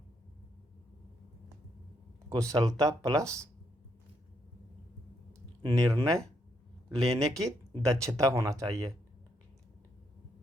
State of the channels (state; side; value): normal; both; correlation 0.76